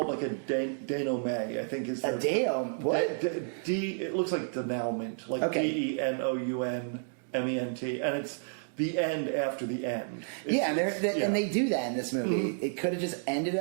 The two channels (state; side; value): silent; left; digital silence